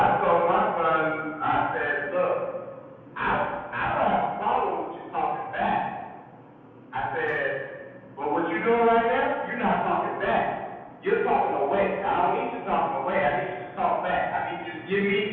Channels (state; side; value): identical; both; correlation 1.00